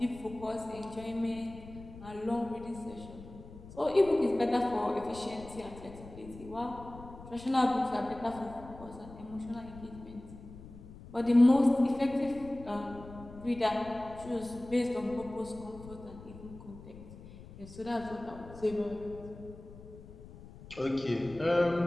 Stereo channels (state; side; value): noise; left; rumble, 16 dB below the sound